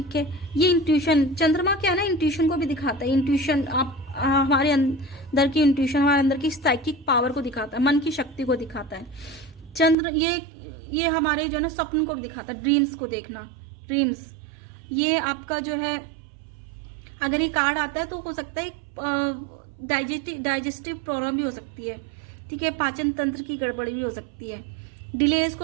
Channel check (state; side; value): drops out; left; at 10.0 s